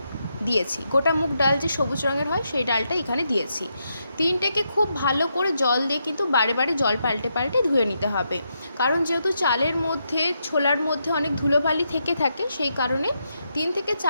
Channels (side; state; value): both; inverted; correlation -0.81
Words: দিয়েছি। গোটা মুগ ডাল যে সবুজ রঙের হয় সেই ডালটা এখানে দিয়েছি। তিনটেকে খুব ভালো করে জল দিয়ে কিন্তু বারে বারে জল পাল্টে পাল্টে ধুয়ে নিতে হবে, কারণ যেহেতু চালের মধ্যে ছোলার মধ্যে অনেক ধুলোবালি থেকে থাকে, সেই কারণে 3 থেকে